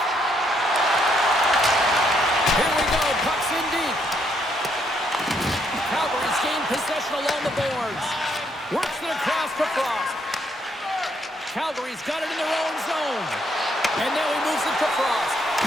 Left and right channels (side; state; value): both; normal; correlation 0.73